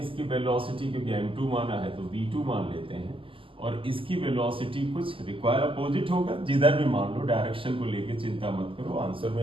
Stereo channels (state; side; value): late; left; 0.25 ms